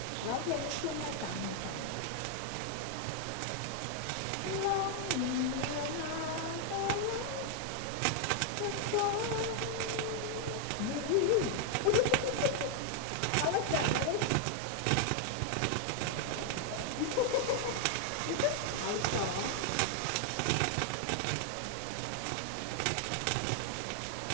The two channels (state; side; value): different; both; correlation 0.00